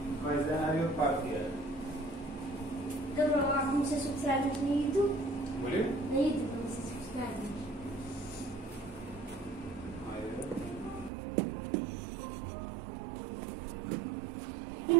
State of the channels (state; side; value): drops out; left; at 11.1 s